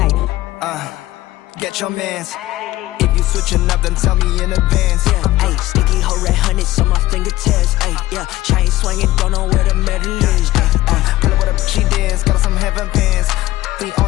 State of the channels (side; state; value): right; quieter; 16.7 dB